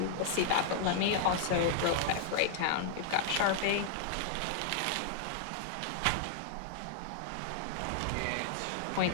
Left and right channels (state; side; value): different; both; correlation -0.01